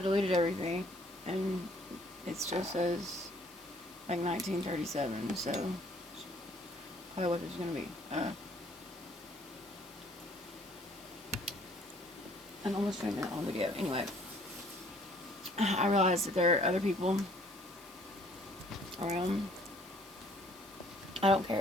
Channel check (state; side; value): noise; left; hiss, 21 dB below the sound